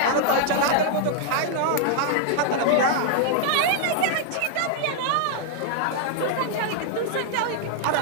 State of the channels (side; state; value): both; different; correlation -0.01